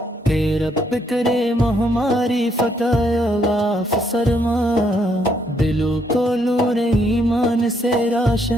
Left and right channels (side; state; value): both; normal; correlation 0.72